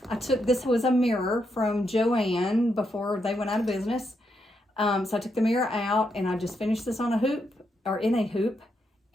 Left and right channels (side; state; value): both; normal; correlation 0.81